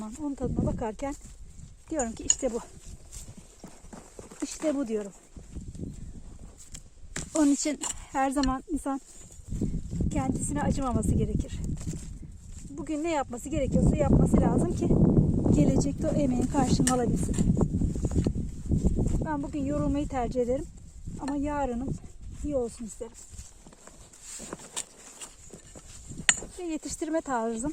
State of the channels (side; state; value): both; identical; correlation 1.00